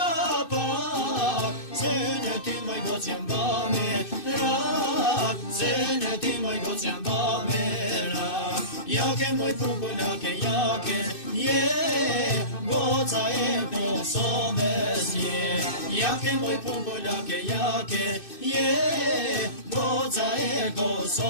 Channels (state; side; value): late; right; 2.6 ms